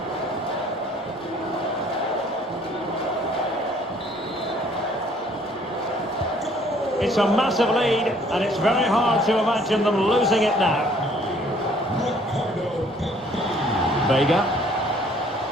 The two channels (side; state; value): both; normal; correlation 0.59